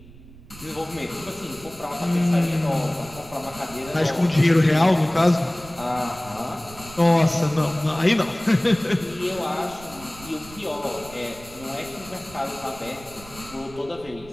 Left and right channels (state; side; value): noise; right; rumble, 19 dB below the sound